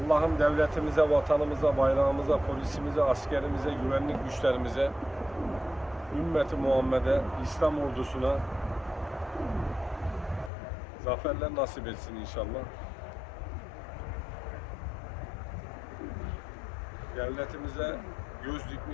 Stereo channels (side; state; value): right; drops out; at 10.5 s